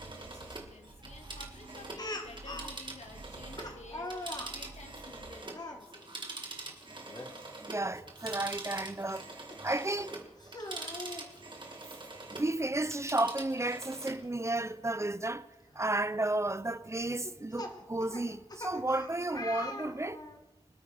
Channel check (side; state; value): both; normal; correlation 0.65